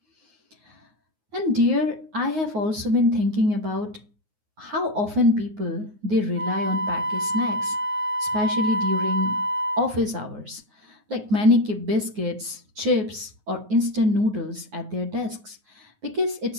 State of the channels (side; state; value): left; late; 9.5 ms